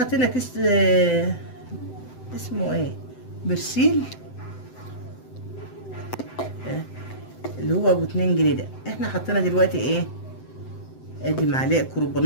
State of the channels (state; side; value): late; right; 7.8 ms